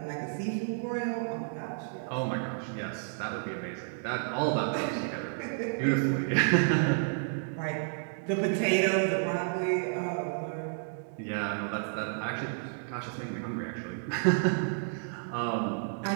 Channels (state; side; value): silent; left; 57 dB below the other